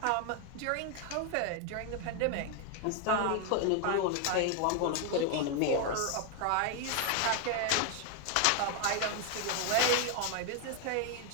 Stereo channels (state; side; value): different; both; correlation 0.01